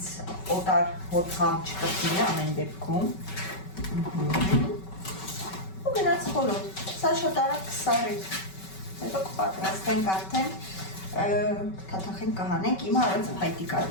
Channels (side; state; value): right; late; 5.3 ms